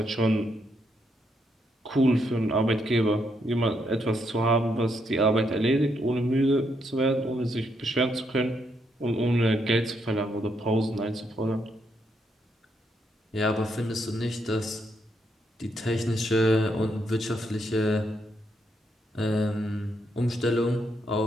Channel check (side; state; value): both; normal; correlation 0.77